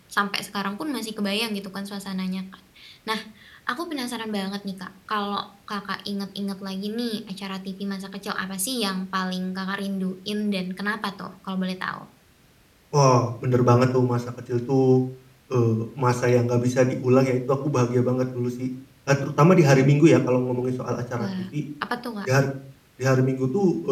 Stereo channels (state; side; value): identical; both; correlation 1.00